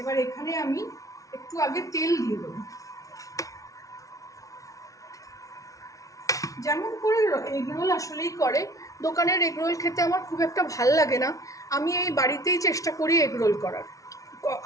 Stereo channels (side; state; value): right; late; 0.17 ms